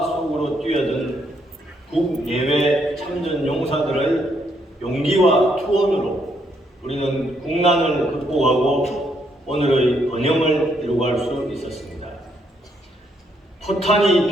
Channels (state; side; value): normal; both; correlation 0.74